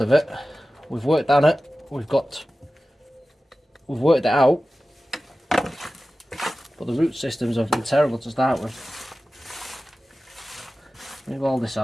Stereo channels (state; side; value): normal; both; correlation 0.95